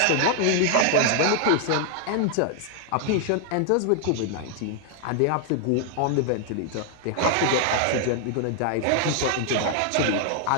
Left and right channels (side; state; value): both; different; correlation 0.00